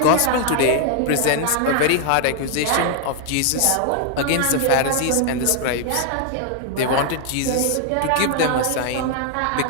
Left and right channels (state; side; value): different; both; correlation 0.00